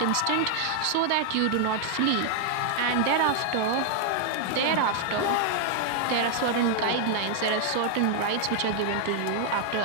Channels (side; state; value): both; different; correlation 0.00